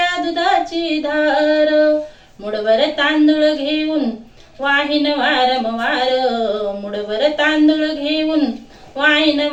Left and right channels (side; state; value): both; identical; correlation 1.00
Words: दुधाची धार. मुठभर तांदूळ घेऊन वाहिन वारंवार, मुठभर तांदूळ घेऊन वाहिन